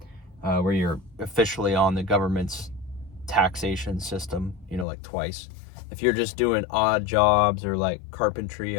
where you're officially on the government's taxation system, like twice. If you're just doing odd jobs or like carpentry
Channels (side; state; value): right; drops out; at 4.9 s